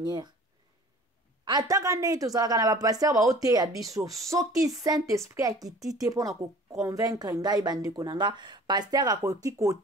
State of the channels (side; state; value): both; normal; correlation 0.47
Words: ataka ndenge tozalaka na bapasteur baote ya biso soki Saint-Esprit akiti te mpona koconvaincre ngai bandeko nanga pasteur akoki